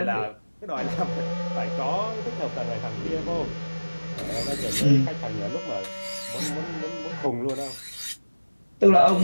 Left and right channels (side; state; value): both; inverted; correlation -1.00